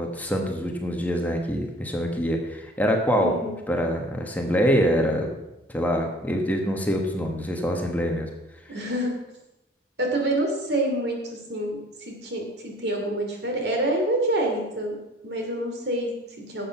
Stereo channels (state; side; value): normal; both; correlation 0.51